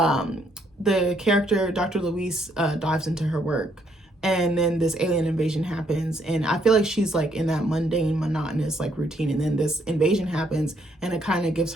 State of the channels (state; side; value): normal; both; correlation 0.71